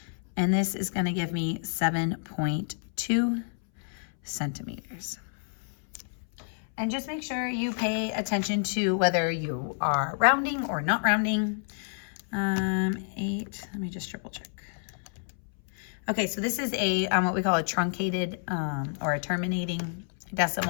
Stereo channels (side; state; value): right; silent; 59 dB below the other